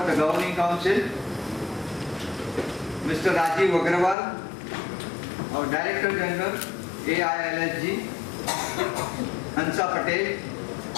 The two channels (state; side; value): drops out; right; at 4.2 s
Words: the Governing Council, Mr. Rajiv Agrawal, our Director General, AILSG, Hansa Patel,